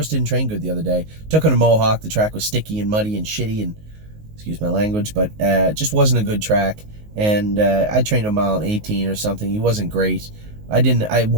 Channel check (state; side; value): late; left; 19 ms